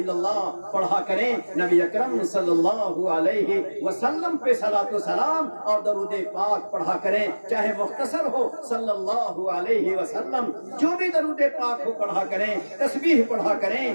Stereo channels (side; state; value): both; inverted; correlation -1.00